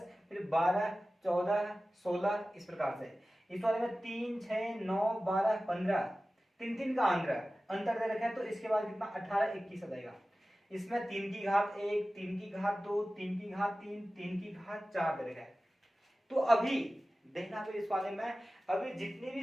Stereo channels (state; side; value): normal; both; correlation 0.96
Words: फिर 12 14 16 इस प्रकार से। इस वाले में 3 6 9 12 15 तीन तीन का अंतर दे रखा है। तो इसके बाद कितना 18 21 आ जाएगा। इसमें 3 की घात 1 3 की घात 2 3 की घात 3 3 की घात 4 दे रखा है। तो अभी देखना फिर इस वाले में अभी जितने